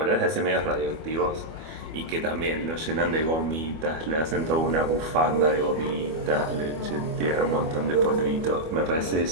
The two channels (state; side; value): late; left; 25 ms